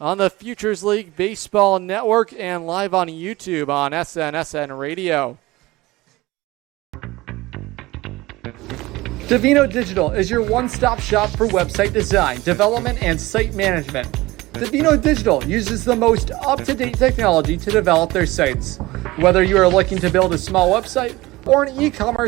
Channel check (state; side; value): quieter; left; 19.9 dB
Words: the Futures League Baseball Network and live on YouTube on SNSN Radio. Divino Digital is your one-stop shop for website design, development, and site management. Divino Digital uses the most up-to-date technology to develop their sites. Whether you are looking to build a small website or an